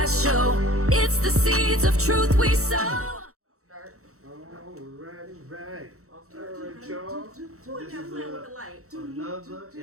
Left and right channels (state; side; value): late; left; 0.64 ms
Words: show, it's the seeds of truth we sow. Start. Right. Alright, y'all. Who in there playing with the light? Another